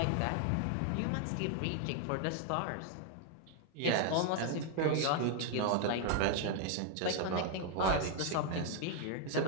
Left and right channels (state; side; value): different; both; correlation 0.00